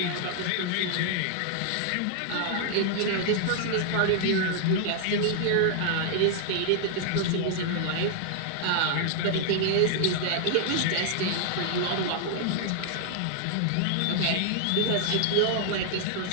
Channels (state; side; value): different; both; correlation 0.00